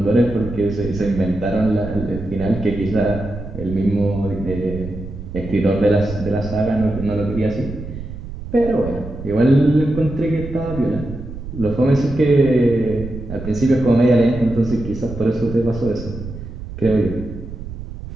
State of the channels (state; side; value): noise; right; rumble, 10 dB below the sound